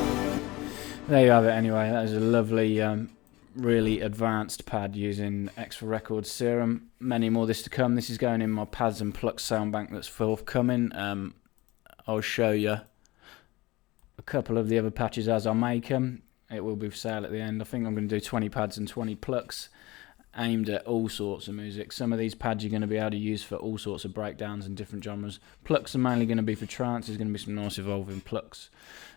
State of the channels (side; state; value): right; quieter; 20.4 dB